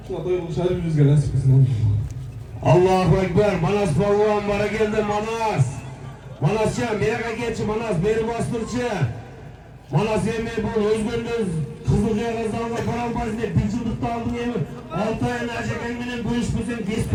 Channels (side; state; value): both; identical; correlation 1.00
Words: Şuna doyulu şahri yüzge nasip etsin. Allahu Ekber. Manas Balvan bana geldi Manas. Manascan meraka geçi Manas beri bastırçı. Manas yemeği bu özgürlüğünüz Kızılcaya kazanla param bazında bir yıllıkta aldın yemeği. 6 ayın acıkenginin bu iş bizim geç